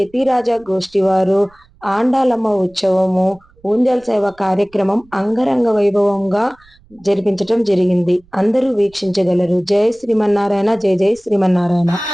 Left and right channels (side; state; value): right; noise; rumble, 30 dB below the sound